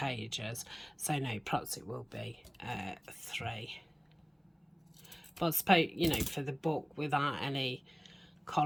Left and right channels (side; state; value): both; identical; correlation 1.00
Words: So no, perhaps it will be 3. But I suppose, you know, for the book without any